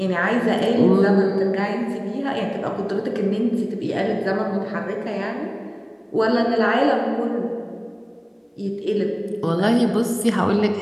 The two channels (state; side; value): identical; both; correlation 1.00